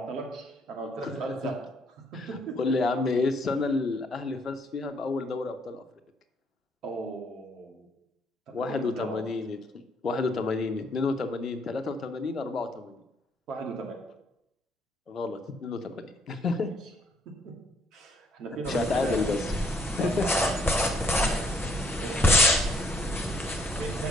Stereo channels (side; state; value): both; normal; correlation 0.66